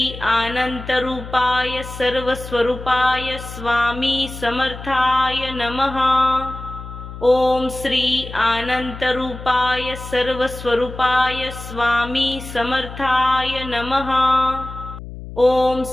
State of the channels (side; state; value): left; noise; hum, 12 dB below the sound